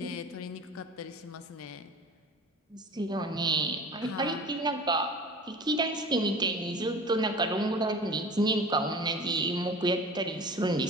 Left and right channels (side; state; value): both; normal; correlation 0.39